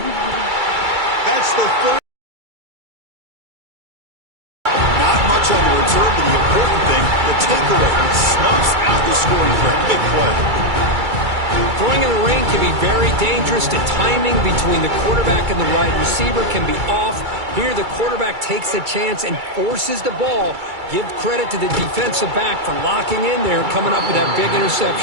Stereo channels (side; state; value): left; late; 2.3 ms